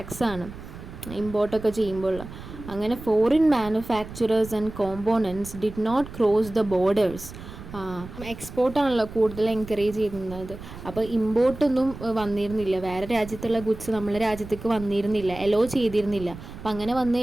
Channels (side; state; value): right; noise; rumble, 13 dB below the sound